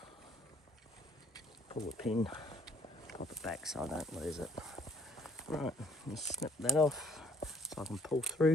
Pull the pin, pop it back so I don't lose it. Right, just snip that off so I can pull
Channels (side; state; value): both; normal; correlation 0.61